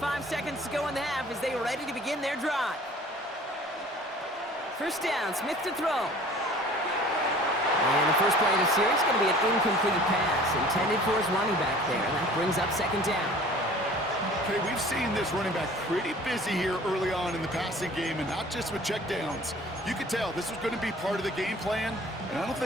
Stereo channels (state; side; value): normal; both; correlation 0.48